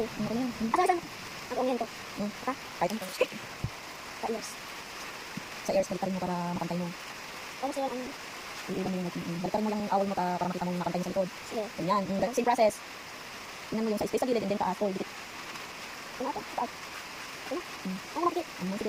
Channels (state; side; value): identical; both; correlation 1.00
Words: Ano ko na yan? Asan? Ang umiyan ko. Ha? Kahit ano. Sa ears. Sa ears, balik rin mo para makantay mo. Ano sa'yo ang... Iiwan mo yung balik mo lang yung awal mo para makita mo makantay mo sa likod. Sige. Ganyan. Same process. Tingnan mo yung sa space sa gilid and then taas. Oh, dikit. Ano ito? Taas. Ano? Ano nakikit?